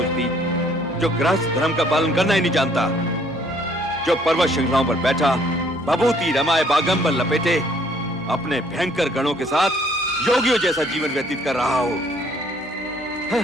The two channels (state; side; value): normal; both; correlation 0.62